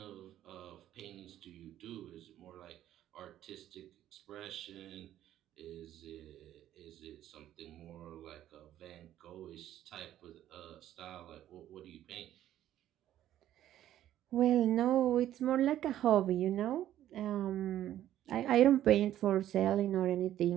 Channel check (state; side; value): quieter; left; 12.3 dB